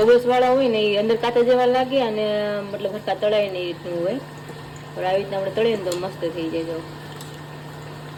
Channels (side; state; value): both; identical; correlation 1.00